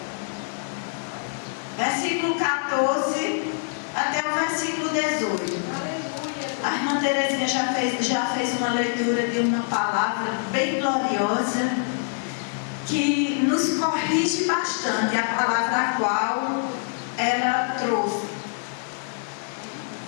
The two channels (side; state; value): right; silent; digital silence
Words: 14 até o versículo 18. A irmã Terezinha já fez uma leitura de uma palavra bem gloriosa que nos corrige bastante, a palavra a qual ela trouxe.